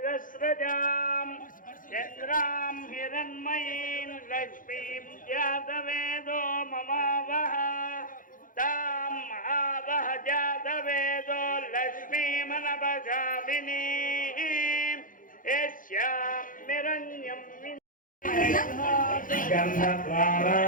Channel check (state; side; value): late; right; 0.39 ms